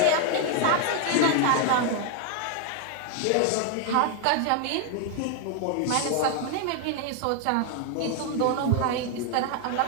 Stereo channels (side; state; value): both; different; correlation 0.00